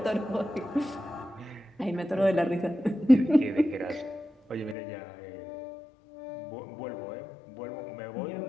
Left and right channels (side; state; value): right; drops out; at 4.8 s